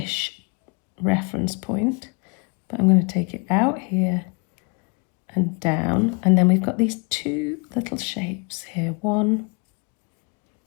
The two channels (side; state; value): right; quieter; 33.6 dB